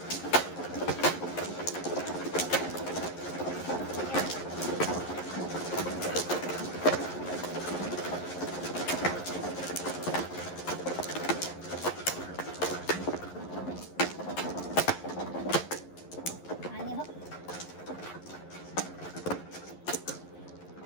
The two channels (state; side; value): late; right; 11 ms